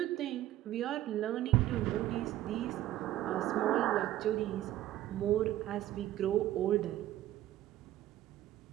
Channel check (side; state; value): left; quieter; 13.9 dB